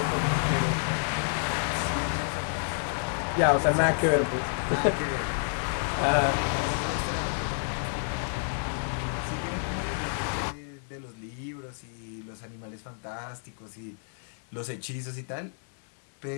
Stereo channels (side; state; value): right; silent; digital silence